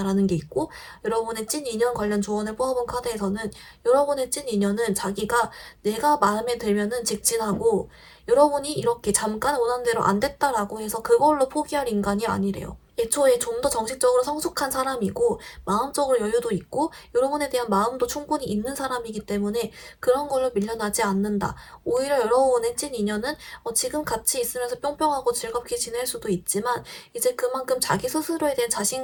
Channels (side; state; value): both; identical; correlation 1.00